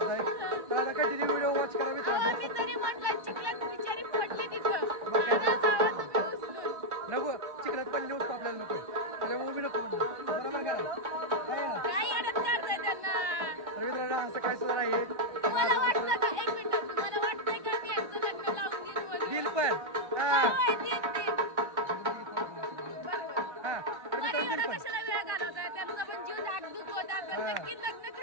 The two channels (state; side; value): late; left; 1.2 ms